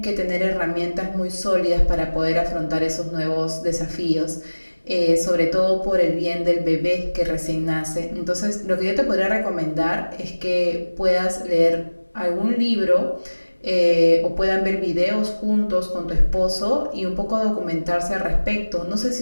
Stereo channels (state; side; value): inverted; both; correlation -1.00